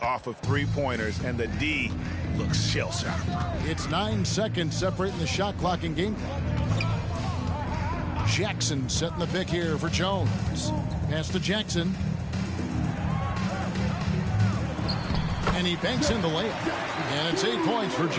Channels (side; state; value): both; identical; correlation 1.00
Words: of three-pointers, and the D looks shell-shocked. It's 9 seconds separating the shot clock and game clock. Jackson setting the pick here for Jones. Pass to Jackson. And he banks in the layup. And it's 8 points for